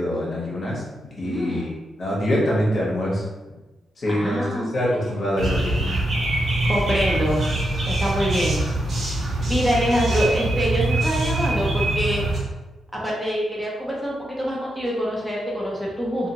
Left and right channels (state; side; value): normal; both; correlation 0.84